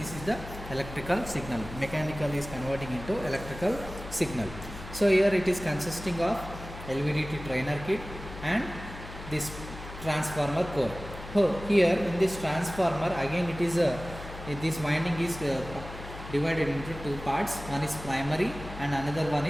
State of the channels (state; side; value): noise; left; hum, 12 dB below the sound